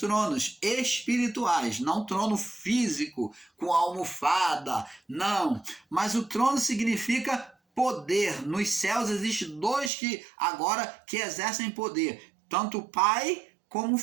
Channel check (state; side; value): drops out; left; at 9.9 s